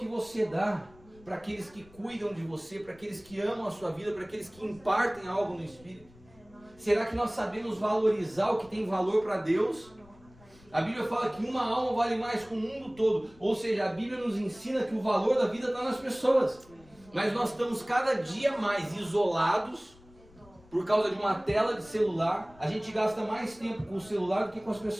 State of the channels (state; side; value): noise; left; rumble, 26 dB below the sound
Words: você dá? para aqueles que cuidam de você, para aqueles que amam a sua vida, para aqueles que impartem algo no Espírito? Será que nós sabemos valorizar o que tem valor para Deus? A Bíblia fala que uma alma vale mais que o mundo todo. Ou seja, a Bíblia nos ensina que o valor da vida está nas pessoas. Mas nós estamos cada dia mais isolados por causa de uma tela de celular. A gente gasta mais tempo com o celular do que com as